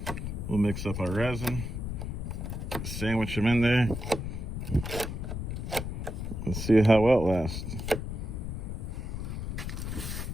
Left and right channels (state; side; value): noise; left; rumble, 4 dB below the sound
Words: we'll mix up our resin, sandwich them in there, and see how well it lasts.